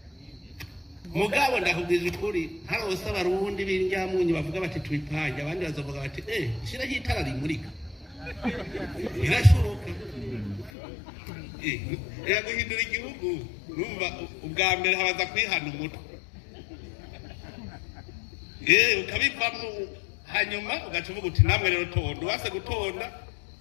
mugabo ndakubwiza ukuri harose abarundi b'indyamunyu bavuga bati twipange abandi bazovuga bati shira hitara rimurika irashoboka guhindura igihugu numva ubwa mbere habaza kwihana umutwe ukabivamo hanyuma ugaca uvuga uti namwe rero tonda wase gutonda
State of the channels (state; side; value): drops out; right; at 10.7 s